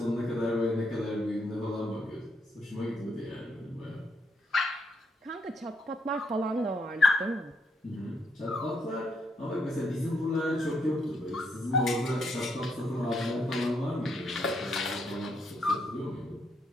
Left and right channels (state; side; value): normal; both; correlation 0.76